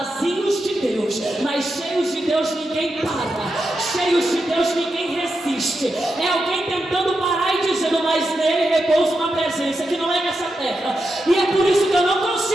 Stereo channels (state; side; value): normal; both; correlation 0.87